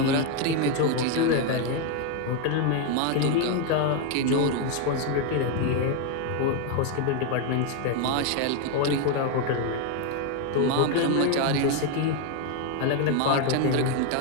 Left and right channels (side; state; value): both; different; correlation 0.01